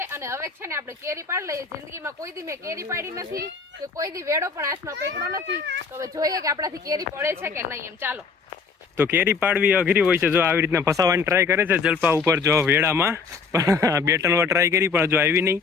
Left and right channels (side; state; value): right; quieter; 5.1 dB